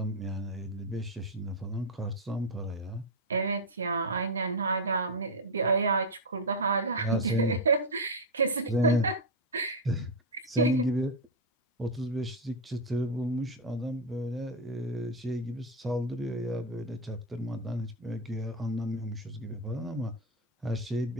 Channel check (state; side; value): normal; both; correlation 0.05